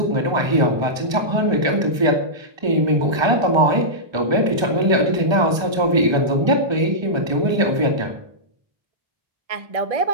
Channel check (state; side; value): late; left; 1.3 ms